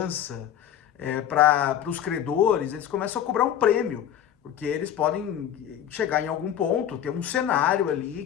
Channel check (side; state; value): right; quieter; 10.1 dB